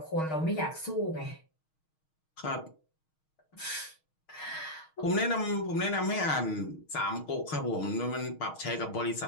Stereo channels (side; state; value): right; late; 6.4 ms